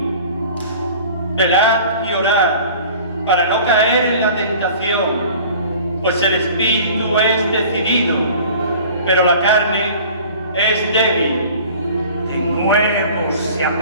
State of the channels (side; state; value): both; inverted; correlation -0.45